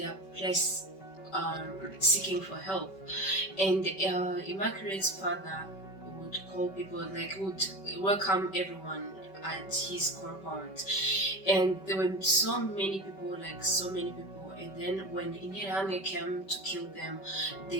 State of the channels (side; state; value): right; late; 5.2 ms